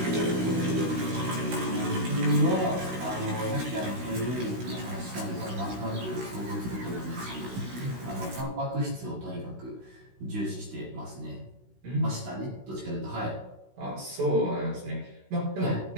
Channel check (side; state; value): left; late; 16 ms